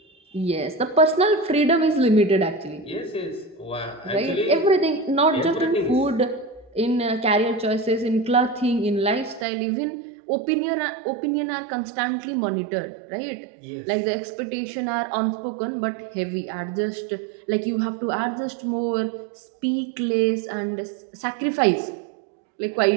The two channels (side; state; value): left; drops out; at 9.5 s